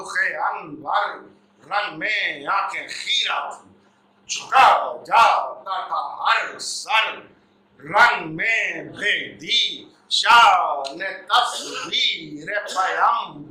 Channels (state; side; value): identical; both; correlation 1.00